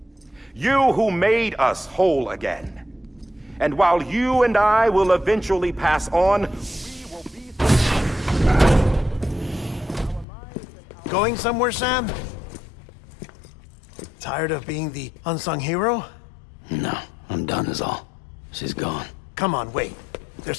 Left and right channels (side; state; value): right; drops out; at 10.2 s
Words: You who made us whole again. And while you and I will eventually pass on, we will be... Going somewhere, Sam? Tired of being the unsung hero? No, I'm done is all. She's gone. Come on, wait. There's